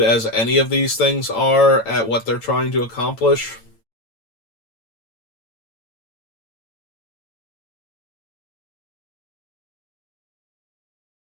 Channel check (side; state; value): right; late; 8.9 ms